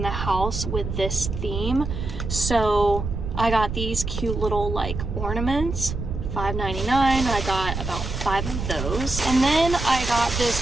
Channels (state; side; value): noise; right; rumble, 5 dB below the sound